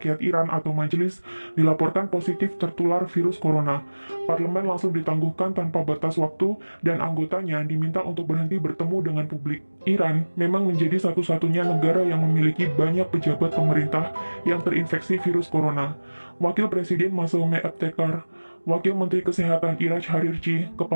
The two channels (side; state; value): both; inverted; correlation -1.00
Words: Iran atau majelis dilaporkan positif tertular virus corona. Parlemen langsung ditangguhkan tanpa batas waktu dan anggotanya diminta untuk berhenti bertemu dengan publik. Iran memang menjadi satu-satunya negara yang memiliki banyak pejabat pemerintah yang terinfeksi virus corona. Wakil Presiden Masoume Ebtekar, Wakil Menteri Kesehatan Iraj Harirchi,